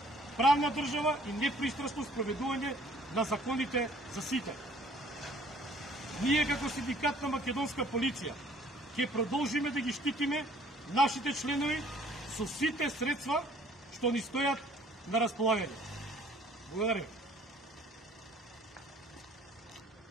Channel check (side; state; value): both; normal; correlation 0.56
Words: правна држава и непристрасно спроведување на законите за сите. Ние како синдикат на македонска полиција ќе продолжиме да ги штитиме нашите членови со сите средства што ни стојат на располагање. Благодарам.